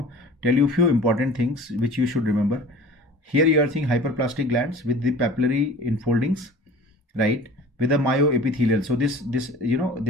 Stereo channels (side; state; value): both; normal; correlation 0.42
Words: tell you a few important things which you should remember. Here you are seeing hyperplastic glands with the papillary enfoldings, right, with the myoepithelial. So this